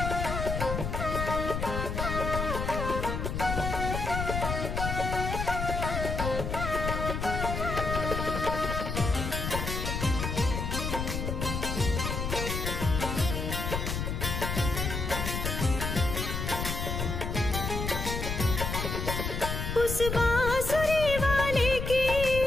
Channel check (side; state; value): left; noise; rumble, 3 dB below the sound